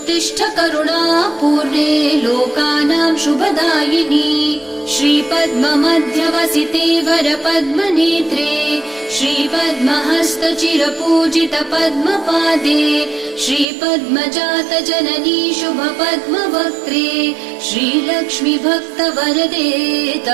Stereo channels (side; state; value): left; drops out; at 13.7 s